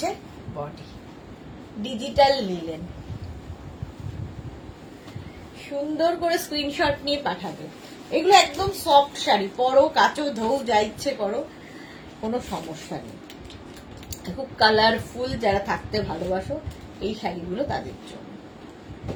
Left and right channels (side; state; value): both; identical; correlation 1.00